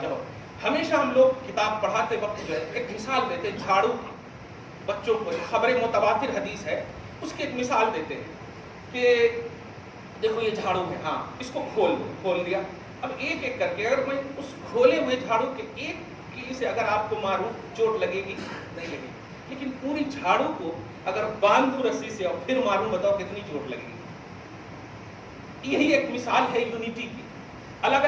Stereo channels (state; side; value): identical; both; correlation 1.00